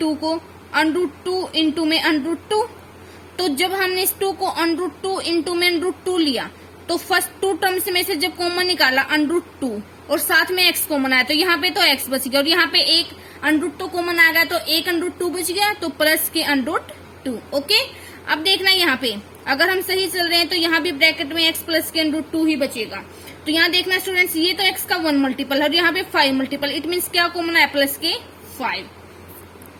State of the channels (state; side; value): identical; both; correlation 1.00